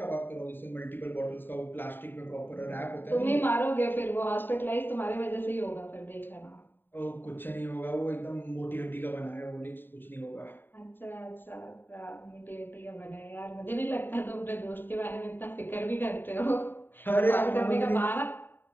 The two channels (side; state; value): right; late; 0.095 ms